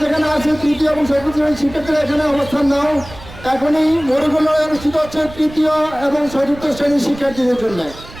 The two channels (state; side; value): noise; right; rumble, 17 dB below the sound